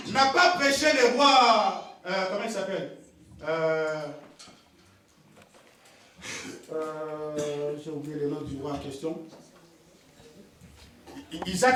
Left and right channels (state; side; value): identical; both; correlation 1.00